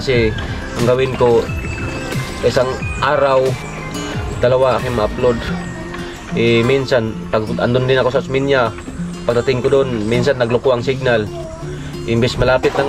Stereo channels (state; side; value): identical; both; correlation 1.00